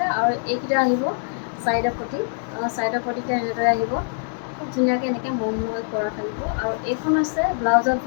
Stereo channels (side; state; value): right; silent; digital silence